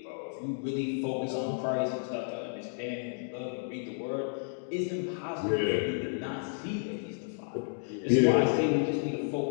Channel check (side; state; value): right; silent; digital silence